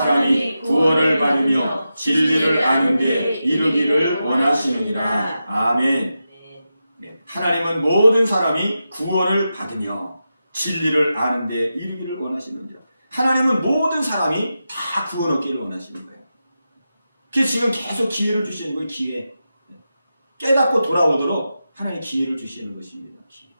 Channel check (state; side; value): inverted; both; correlation -0.90